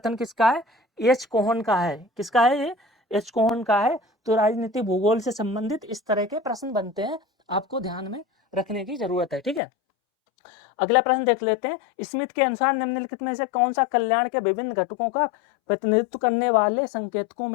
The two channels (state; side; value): drops out; right; at 9.6 s